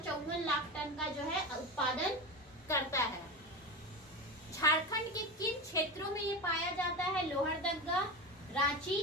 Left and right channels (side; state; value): both; normal; correlation 0.22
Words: लाख टन का जो है उत्पादन करता है। झारखंड के किन क्षेत्रों में ये पाया जाता है? लोहरदगा, रांची,